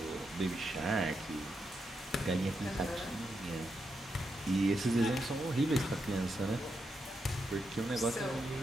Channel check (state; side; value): normal; both; correlation 0.84